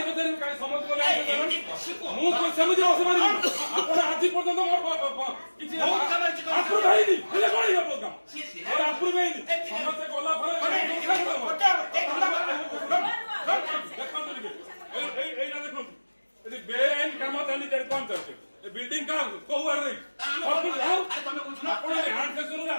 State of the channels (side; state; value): both; inverted; correlation -1.00